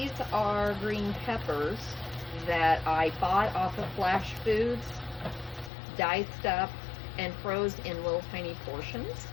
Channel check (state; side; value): drops out; right; at 5.7 s